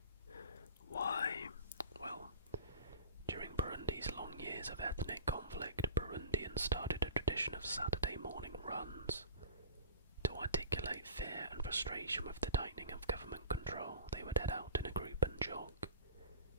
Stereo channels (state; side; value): inverted; both; correlation -0.39